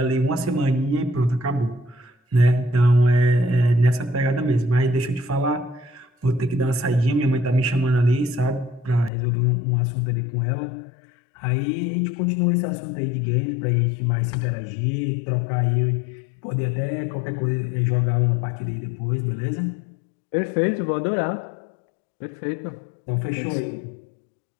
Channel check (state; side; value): drops out; right; at 9.1 s